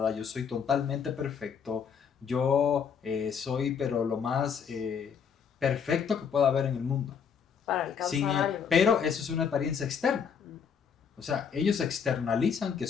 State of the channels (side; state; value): right; quieter; 6.9 dB